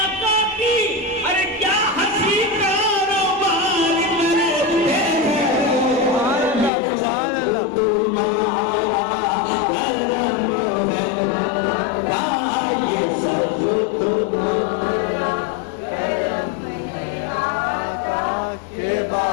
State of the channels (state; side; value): drops out; right; at 6.7 s